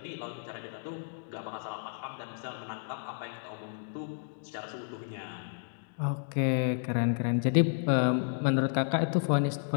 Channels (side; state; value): right; silent; digital silence